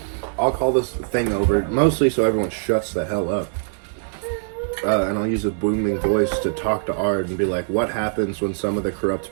I'll call this thing over, mostly so everyone shuts the hell up. And I'll use a booming voice to talk to Ard and be like, what happens when some of the corrupt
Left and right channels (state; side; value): silent; left; digital silence